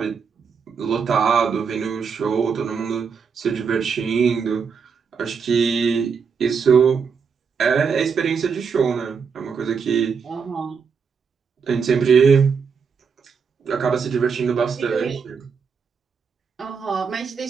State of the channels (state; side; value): quieter; left; 6.0 dB